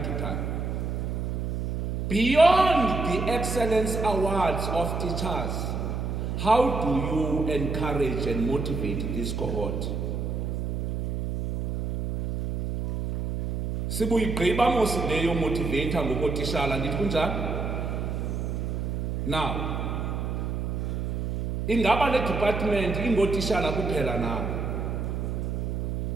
to time. Beyond the excellence awards of teachers, how do you encourage and motivate this cohort? Sibuyigqiba mos leyo motivator ngokotishala, andithi kunjalo? Now, ingaba le department ingotishala kuphela na?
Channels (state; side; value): noise; right; hum, 2 dB below the sound